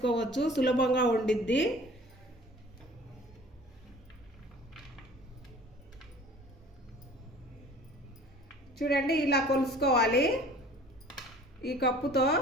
సులభంగా ఉండిద్ది. చూడండి, ఇలా కొలుసుకోవాలి ఈ కప్పుతో.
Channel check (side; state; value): both; normal; correlation 0.47